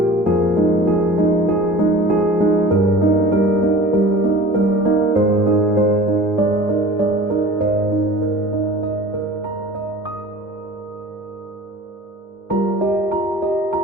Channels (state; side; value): normal; both; correlation 0.41